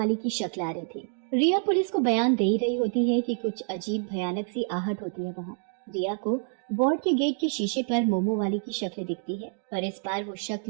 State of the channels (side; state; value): left; silent; 60 dB below the other